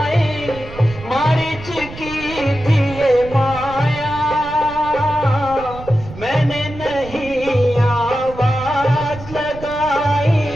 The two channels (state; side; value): noise; right; rumble, 14 dB below the sound